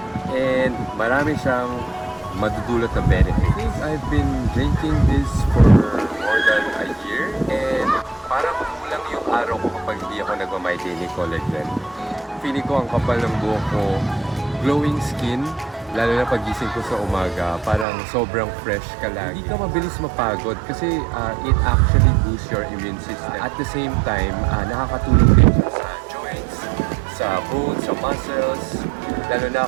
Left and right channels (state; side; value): drops out; left; at 17.9 s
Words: and marami siyang madudulot na benefits. I think I've been drinking this for more than a year and parang kulang yung araw ko kapag hindi ako nagma-my Daily Collagen. Feeling ko ang kapal ng buhok ko, glowing skin, lalo na pagising ko sa umaga, parang sobrang fresh ka lagi. Hindi ka mabilis mapagod kasi it actually boosts your immune system. At the same time, nakakatulong din siya sa joints, sa bones, sa muscles, lalo na